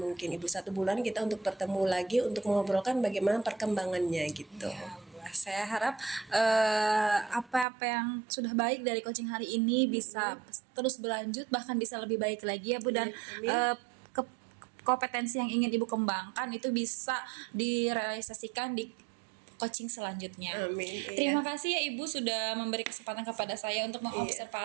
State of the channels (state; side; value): drops out; left; at 7.7 s